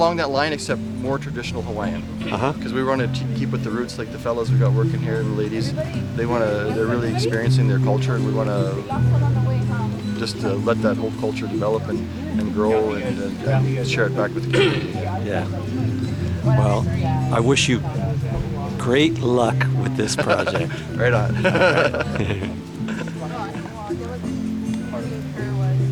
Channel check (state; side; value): identical; both; correlation 1.00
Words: that line, except more traditional Hawaiian. Because we want to keep with the roots, like the fellows we got working here, the ladies. They're really experiencing their culture, and we want to just let that whole culture develop and grow and share it back with the community. Yeah. Well, I wish you great luck with this project. Right on.